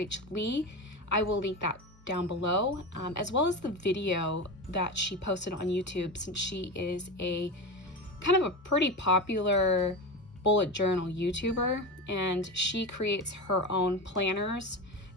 Lee. I will link that down below, as well as the video that she posted on YouTube, since she is a kind of a pretty popular bullet journal YouTuber, and she creates her own planners. I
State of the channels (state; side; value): normal; both; correlation 0.23